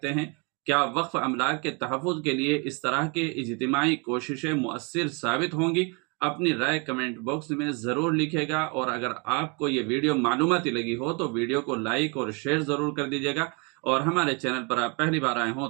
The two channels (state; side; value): quieter; left; 32.7 dB